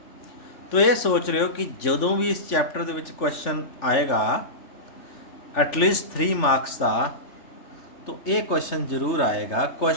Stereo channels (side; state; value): right; late; 3.4 ms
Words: तो ये सोच रहे हो कि ਜਦੋਂ भी इस चैप्टर ਦੇ ਵਿੱਚ क्वेश्चन आएगा एटलीस्ट 3 मार्क्स का, तो ये क्वेश्चन जरूर आएगा।